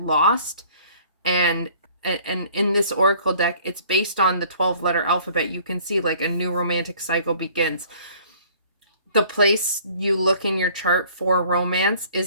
and in this oracle deck, it's based on the 12-letter alphabet. You can see like a new romantic cycle begins. The place you look in your chart for romance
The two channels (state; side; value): inverted; both; correlation -0.54